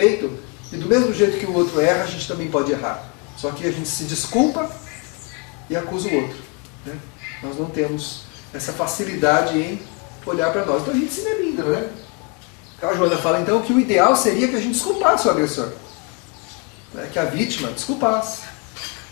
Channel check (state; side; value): quieter; right; 31.2 dB